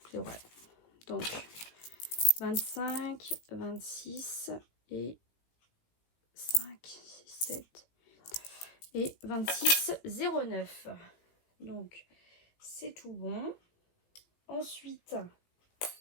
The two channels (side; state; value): right; late; 17 ms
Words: C'est vrai. Donc 25, 26 et 5, 6, 7 et 26,09. Donc c'est tout bon. Ensuite,